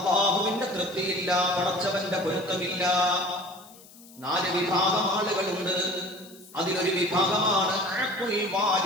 തൃപ്തിയില്ല, പടച്ചവന്റെ പൊരുത്തമില്ല. 4 വിഭാഗം ആളുകളുണ്ട്. അതിലൊരു വിഭാഗമാണ് അഖുൽ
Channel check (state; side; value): noise; left; hiss, 22 dB below the sound